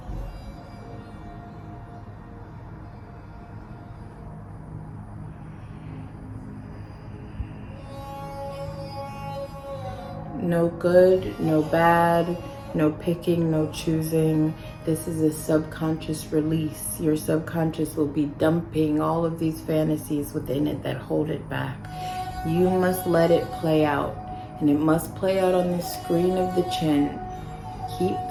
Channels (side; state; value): both; identical; correlation 1.00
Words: No good, no bad, No picking, no choosing. This is a subconscious release. Your subconscious will be dumping all of these fantasies within it that hold it back. You must let it play out, and it must play out on the screen of the chin. Keep